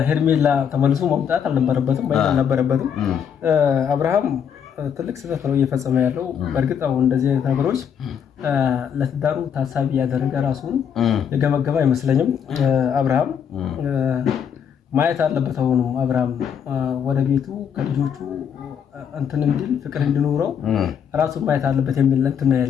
ሄርሜላ ተመልሶ መምጣት አልነበረበትም አብርሃም ትልቅ ስህተት ነው እየፈጸመ ያለው። በእርግጥ አሁን እንደዚህ አይነት ነገሮች ለትዳሩ ታሳቢ ያደረገ ራሱን የገመገመ አይመስለኝም። አብርሃም ማየት አለበት። አሁንም አብርሃም ወደ ቤቱ ከልጆቹ እንትን እንዲል ፍቅር እንዲኖረው ራሱን ማየት አለበት የሚል እንትን ነው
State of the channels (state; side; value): quieter; right; 7.9 dB